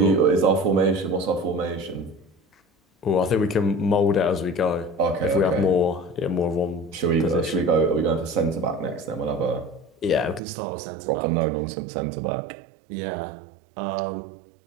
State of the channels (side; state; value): left; drops out; at 10.4 s